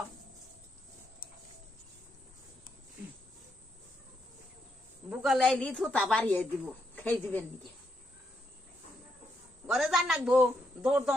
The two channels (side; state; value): both; normal; correlation 0.80